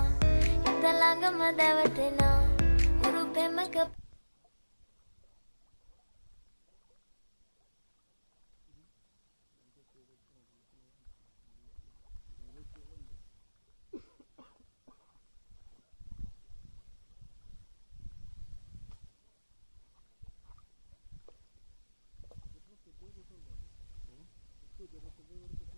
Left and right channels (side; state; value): both; inverted; correlation -1.00